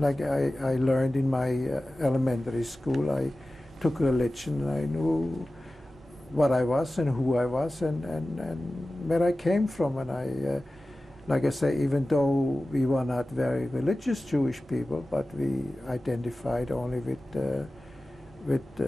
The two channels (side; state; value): both; normal; correlation 0.96